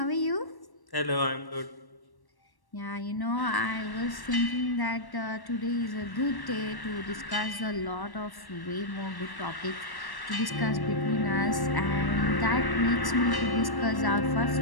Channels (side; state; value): right; late; 1.1 ms